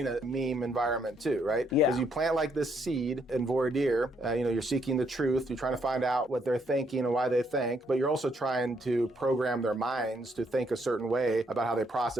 a meme environment too, right? Yeah. Because you plant like this seed in voir dire, you're seeking the truth, you're trying to find out what they're thinking and why they think, but you're also trying to program their minds to think a certain way about how they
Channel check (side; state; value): both; normal; correlation 0.72